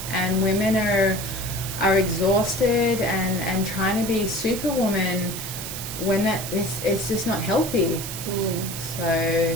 and women are exhausted and trying to be superwoman when it's just not healthy. So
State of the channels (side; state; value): right; noise; hiss, 7 dB below the sound